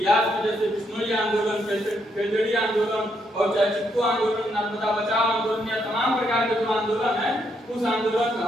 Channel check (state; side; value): normal; both; correlation 0.76